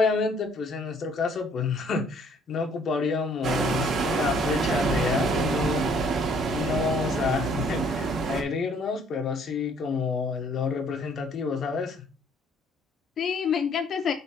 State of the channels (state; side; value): normal; both; correlation 0.61